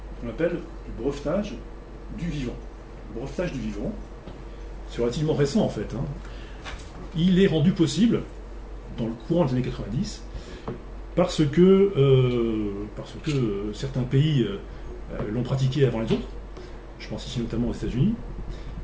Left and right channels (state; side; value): identical; both; correlation 1.00